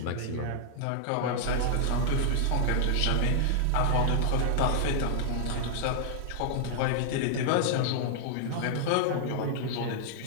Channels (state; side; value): different; both; correlation -0.01